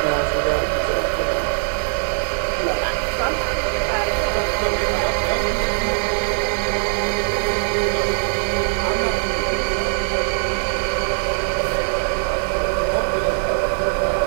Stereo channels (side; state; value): left; silent; digital silence